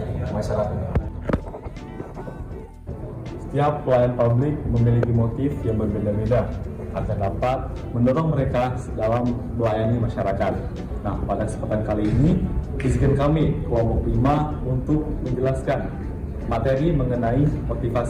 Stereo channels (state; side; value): identical; both; correlation 1.00